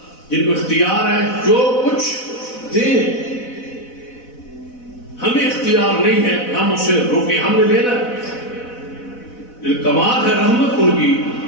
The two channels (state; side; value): late; right; 4.0 ms